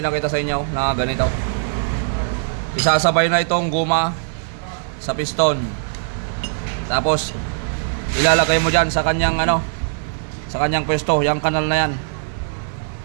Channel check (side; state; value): left; silent; 62 dB below the other